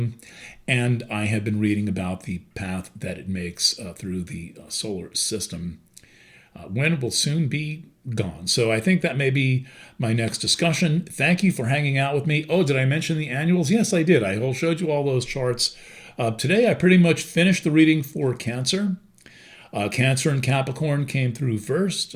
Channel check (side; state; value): both; identical; correlation 1.00